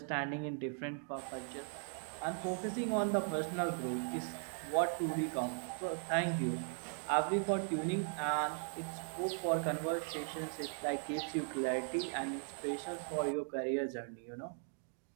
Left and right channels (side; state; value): left; silent; 52 dB below the other